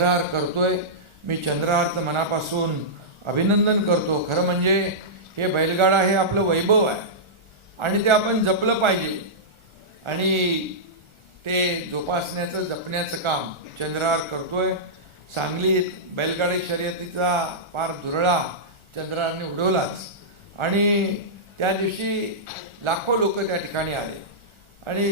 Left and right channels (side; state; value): left; late; 1.4 ms